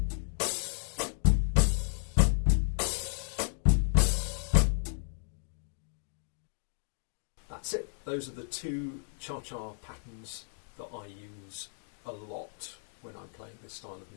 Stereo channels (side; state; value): right; silent; digital silence